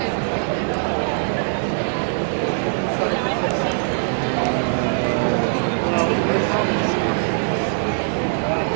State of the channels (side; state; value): left; silent; 65 dB below the other